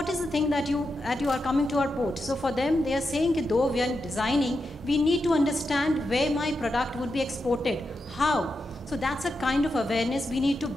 is the thing that you are coming to our port? So for them, they are saying that though we are designing, we need to understand where my product would be exported, how. So that's a kind of awareness we need to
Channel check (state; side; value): normal; both; correlation 0.87